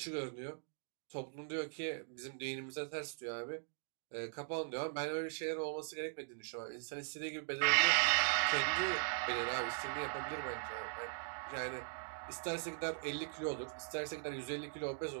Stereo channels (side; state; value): left; silent; digital silence